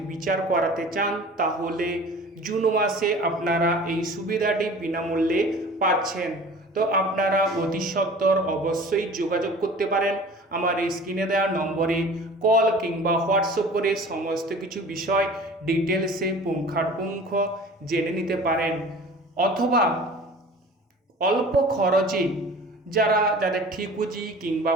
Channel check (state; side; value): normal; both; correlation 0.43